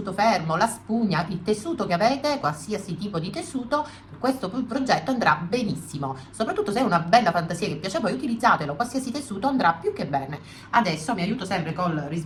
fermo, la spugna, il tessuto che avete, qualsiasi tipo di tessuto, questo progetto andrà benissimo. Soprattutto se è una bella fantasia che piace a voi, utilizzatelo, qualsiasi tessuto andrà più che bene. Adesso mi aiuto sempre col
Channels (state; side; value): identical; both; correlation 1.00